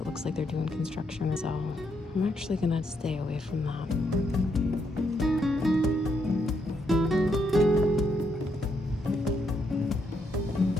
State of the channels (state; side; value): normal; both; correlation 0.77